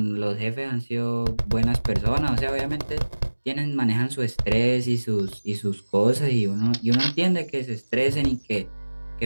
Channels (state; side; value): inverted; both; correlation -1.00